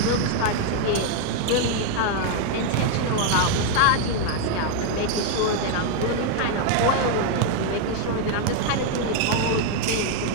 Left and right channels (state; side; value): different; both; correlation 0.00